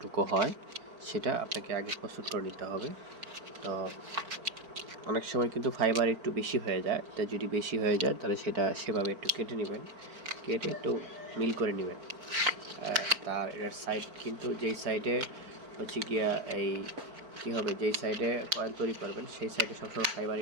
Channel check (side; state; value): left; late; 4.4 ms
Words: হয় সেটা আপনাকে আগে প্রস্তুত করে নিতে হবে। তো অনেক সময় কিন্তু ফাইবার একটু বেশি হয়ে যায়, তাই যদি বেশি হয়ে যায় তাহলে সেটা সেভাবে একটু কেটে নেবেন, কেটে একটু মিল করে নেবেন। তার এর সাইড কিন্তু যেই সাইডে হচ্ছে গিয়া এই কী হবে, যেই সাইডে কয়েল তৈরি করবেন সেই সাইডে সবসময় ফাইবার